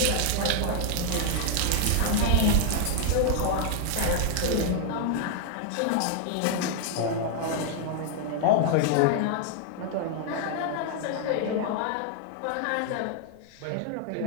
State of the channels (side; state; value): both; different; correlation 0.00